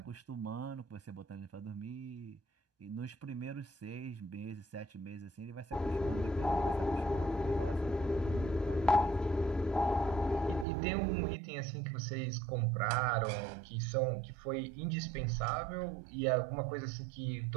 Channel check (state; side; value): drops out; left; at 10.7 s